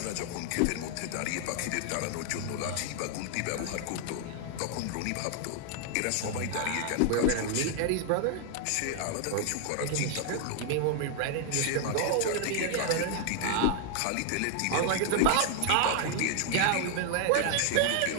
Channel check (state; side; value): different; both; correlation 0.00